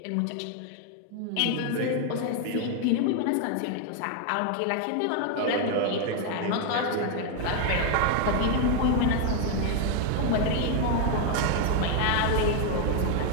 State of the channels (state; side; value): different; both; correlation 0.01